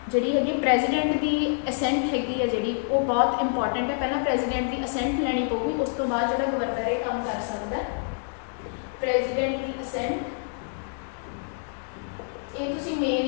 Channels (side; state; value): right; silent; digital silence